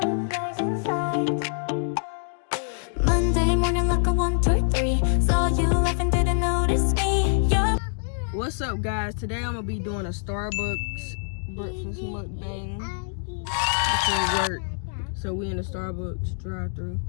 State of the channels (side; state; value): right; silent; digital silence